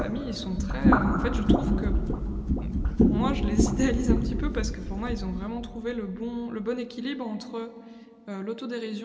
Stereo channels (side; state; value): both; identical; correlation 1.00